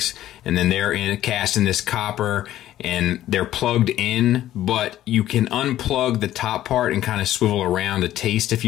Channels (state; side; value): quieter; right; 13.3 dB